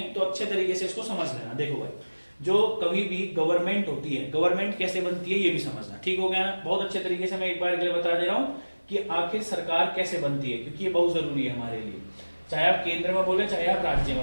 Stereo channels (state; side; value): inverted; both; correlation -1.00